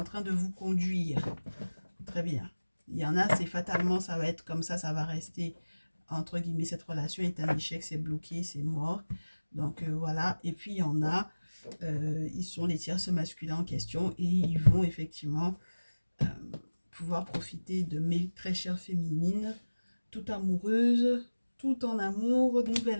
train de vous conduire. Très bien. Il y en a, c'est fatalement, ça va être comme ça va rester, entre guillemets, cette relation est un échec, c'est bloqué, c'est mort. Donc voilà. Et puis il y en a, ils sont les tierces masculins en question et ils vont effectivement euh, pouvoir profiter de mes très chères féminines, tout amoureuses, tout en amour,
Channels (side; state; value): both; inverted; correlation -1.00